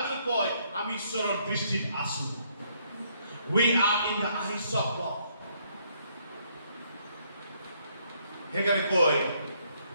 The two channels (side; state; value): both; inverted; correlation -0.70